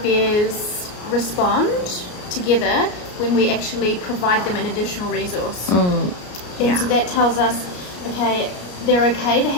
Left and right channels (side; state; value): right; late; 33 ms